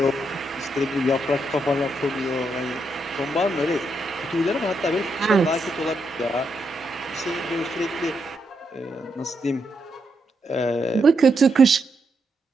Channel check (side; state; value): both; normal; correlation 0.81